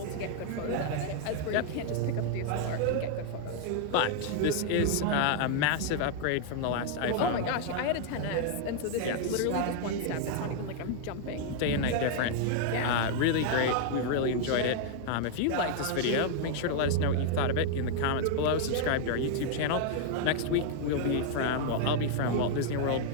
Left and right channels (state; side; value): different; both; correlation 0.00